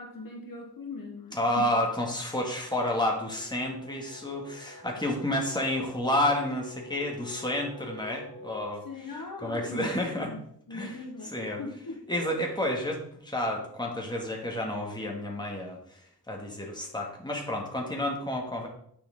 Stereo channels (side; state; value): both; normal; correlation 0.27